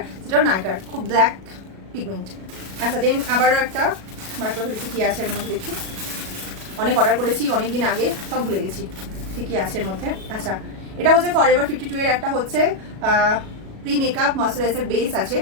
যেটা নাইকার, খুব ব্ল্যাক পিগমেন্ট। আচ্ছা দেন আবারও একটা বার করে দেখি কি আছে এর মধ্যে। দেখি অনেক অর্ডার করেছি অনেক দিন আগে, সব ভুলে গেছি ঠিকই আছে এর মধ্যে। আচ্ছা এটা হচ্ছে ফরএভার 52 এর একটা হচ্ছে প্রি মেকআপ ময়শ্চারাইজার বেস আছে।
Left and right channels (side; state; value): left; late; 37 ms